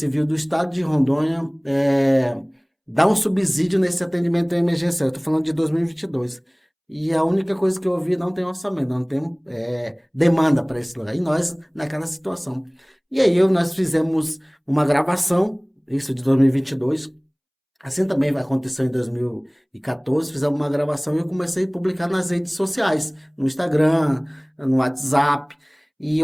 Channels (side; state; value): both; identical; correlation 1.00